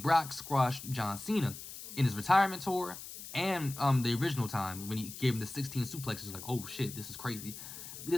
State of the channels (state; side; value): noise; left; hiss, 12 dB below the sound